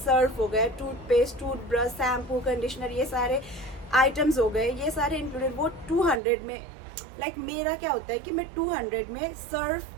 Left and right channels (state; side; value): drops out; left; at 6.2 s